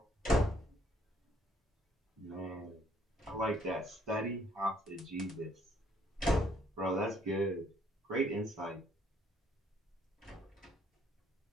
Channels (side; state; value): both; normal; correlation 0.66